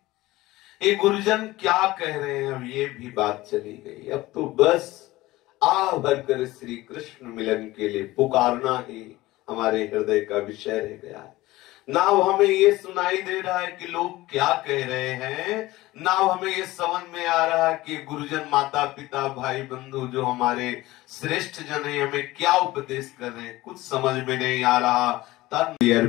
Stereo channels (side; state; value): right; quieter; 18.4 dB